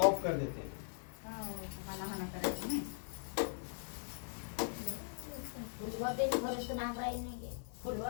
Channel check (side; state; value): right; silent; digital silence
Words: ऑफ कर देते हैं। फुलवा